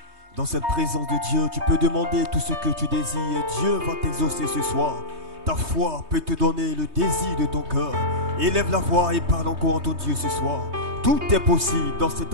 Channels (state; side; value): late; left; 3.2 ms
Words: Dans cette présence de Dieu, tu peux demander tout ce que tu désires. Dieu va t'exaucer ce soir. Ta foi peut te donner le désir de ton cœur. Élève la voix et parle encore en ton Dieu ce soir. Tout est possible dans cette